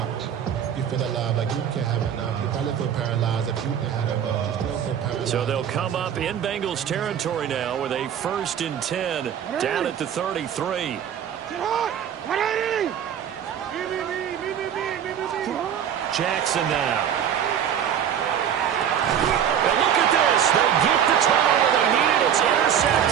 You feel alive like you can't have enough. You probably feel paralyzed if you had a bug. You still feel paralyzed. So they'll come up in Bengals territory now with a 1st and 10 down at the 33. Jackson now. And look at this. They get the turnover they needed. It's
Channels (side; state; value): left; quieter; 9.0 dB